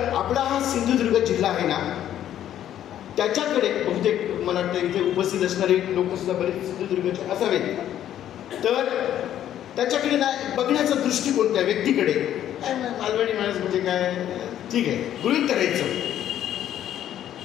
आपला हा सिंधुदुर्ग जिल्हा आहे ना, त्याच्याकडे बहुतेक मला वाटतं इथे उपस्थित असणारे लोक सुद्धा बरेच सिंधुदुर्गचे असावेत. तर त्याच्याकडे ना बघण्याचा दृष्टिकोन त्या व्यक्तीकडे, काय मालवणी माणूस म्हणजे काय, ठीक आहे, गृहीत करायचं,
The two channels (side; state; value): right; quieter; 11.2 dB